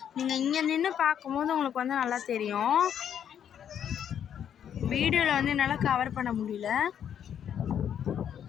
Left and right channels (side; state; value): right; quieter; 9.0 dB